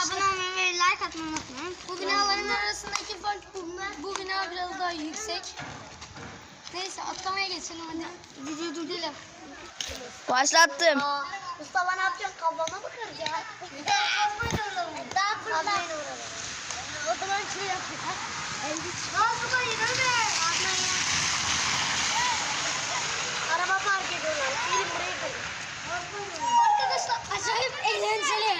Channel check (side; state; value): both; identical; correlation 1.00